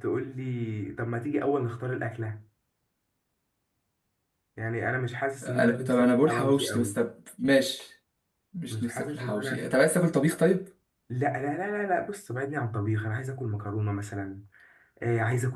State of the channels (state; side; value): identical; both; correlation 1.00